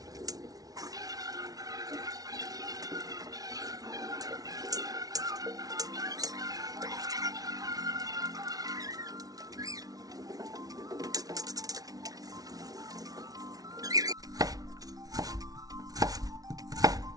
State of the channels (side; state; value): left; late; 0.18 ms